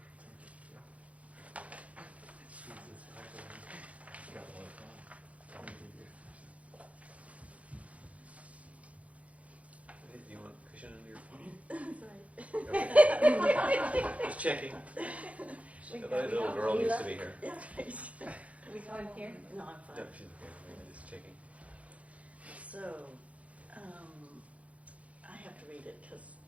Do you want cushion under your feet? That's right. Just checking. The little girl needs to be here. Yeah, right. Are we going here? No, I'm No, fine. she's okay. Just checking. So, I have to read it because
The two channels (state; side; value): late; left; 0.065 ms